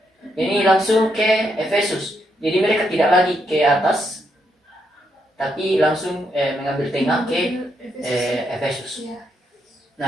Ini langsung ke Efesus. Jadi mereka tidak lagi ke atas, tapi langsung mengambil tengah ke Efesus.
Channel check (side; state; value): both; normal; correlation 0.78